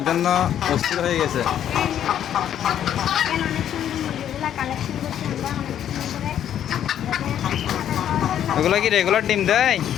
জন্য অস্থির হয়ে গেছে। ওগুলো কি রেগুলার ডিম দেয়?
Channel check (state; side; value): quieter; right; 10.2 dB